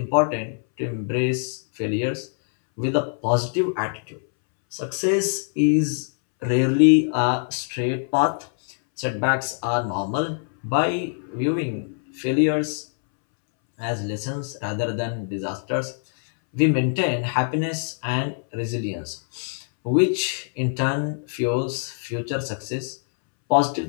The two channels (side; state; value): right; silent; 62 dB below the other